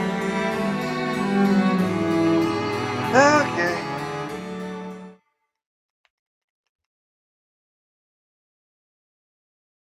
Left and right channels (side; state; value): both; identical; correlation 1.00